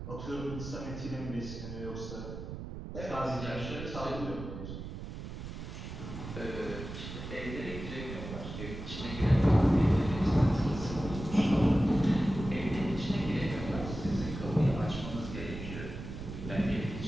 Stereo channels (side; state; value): right; noise; rumble, 9 dB below the sound